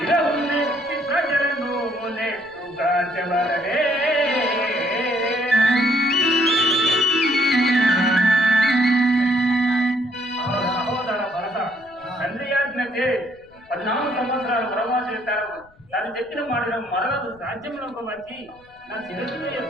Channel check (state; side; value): noise; left; rumble, 29 dB below the sound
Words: ప్రజలను నెట్టుగా చెవరనే సహోదర భరత తండ్రి ఆజ్ఞచే 14 సంవత్సరాలు వనవాసం చేస్తారు. తాను చెప్పిన మాటను మరలకు రాజ్యంలోకి వచ్చి నా శిరస్సును